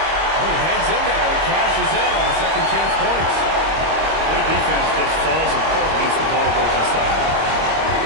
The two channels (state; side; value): late; left; 25 ms